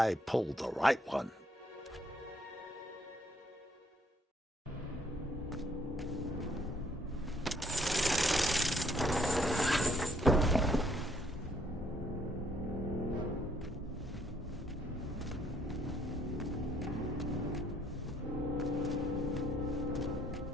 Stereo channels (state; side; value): normal; both; correlation 0.67